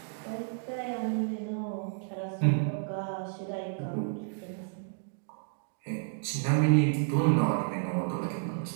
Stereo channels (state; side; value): silent; left; digital silence